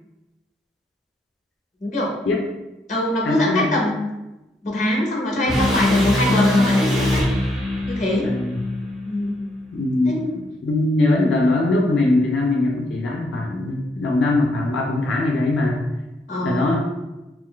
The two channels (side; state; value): both; normal; correlation 0.74